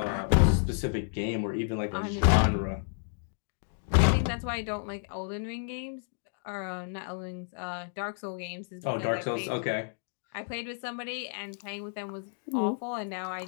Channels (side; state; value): right; silent; digital silence